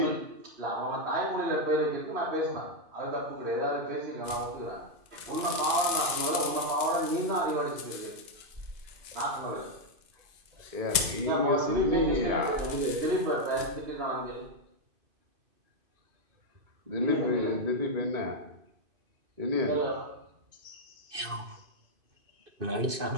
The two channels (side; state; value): left; late; 2.5 ms